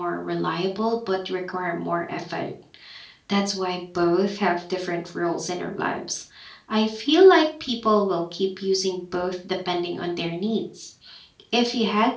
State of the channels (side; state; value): both; identical; correlation 1.00